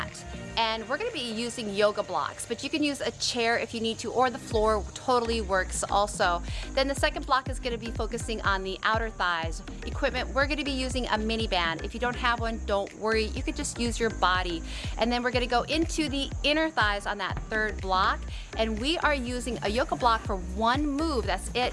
and we're gonna be using yoga blocks, but you can use a chair if you need to, or the floor totally works also. Then the second block is gonna be focusing on the outer thighs. Equipment, we're gonna be using a mini band. If you don't have one, don't worry, you could just use your body. And then we're gonna go into the inner thighs on that third block, and we are using a yoga block for one move, that's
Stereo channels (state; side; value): identical; both; correlation 1.00